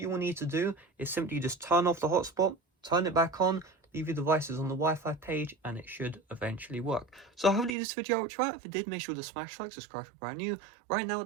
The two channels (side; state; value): left; drops out; at 7.7 s